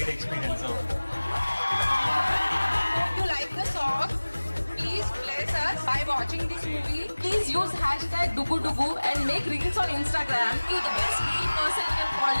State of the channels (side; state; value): both; inverted; correlation -1.00